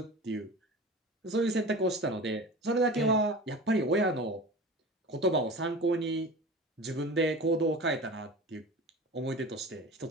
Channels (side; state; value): both; normal; correlation 0.35